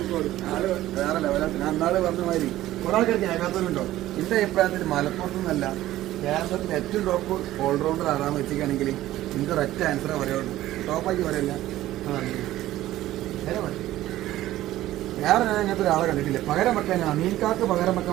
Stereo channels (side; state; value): left; quieter; 14.9 dB